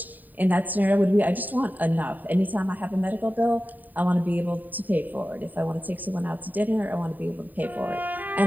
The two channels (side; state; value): left; late; 0.087 ms